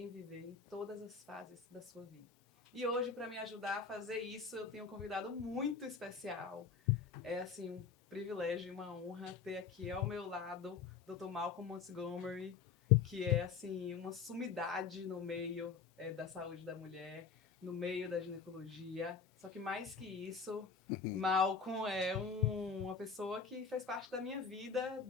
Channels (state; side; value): quieter; right; 5.8 dB